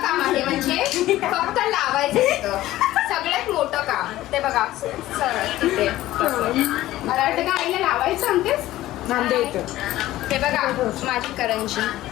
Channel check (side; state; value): right; quieter; 15.4 dB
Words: काम आहे, म्हणजे फक्त लावायचं तिथं सगळ्यात मोठं काम. ते बघा तिथे मला वाटतं का आईला लावायचं सांगतेस. हे बघा माझी करंजी